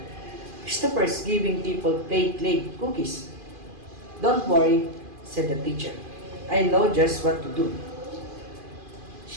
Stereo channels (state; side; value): late; left; 2.5 ms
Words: Christopher's giving people play cookies. Don't worry, said the teacher. I know just what to do.